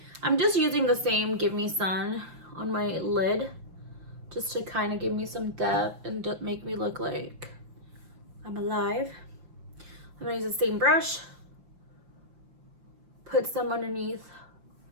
I'm just using the same Give Me Sun on my lid just to kind of give me some depth and make me look like I'm alive. I'm gonna use the same brush, put some underneath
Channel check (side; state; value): left; late; 5.7 ms